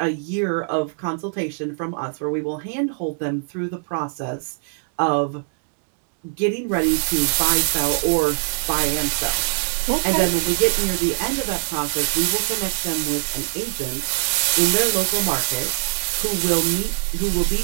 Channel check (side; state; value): left; silent; digital silence